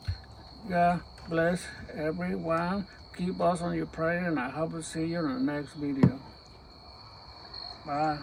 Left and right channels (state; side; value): identical; both; correlation 1.00